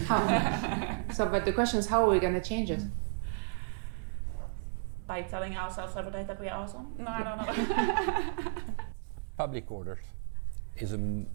So, but the question is, how are we going to change it? By telling ourselves every day that we are awesome? No, I don't know. Public orders is a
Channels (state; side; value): silent; left; 56 dB below the other